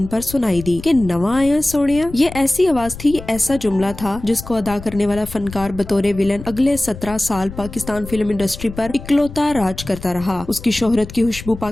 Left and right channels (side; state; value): left; noise; rumble, 13 dB below the sound